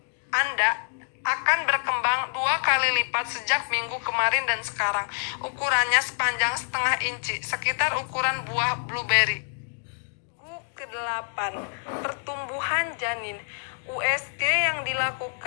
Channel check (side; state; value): right; silent; 60 dB below the other